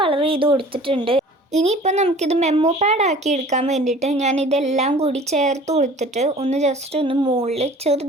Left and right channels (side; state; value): both; normal; correlation 0.47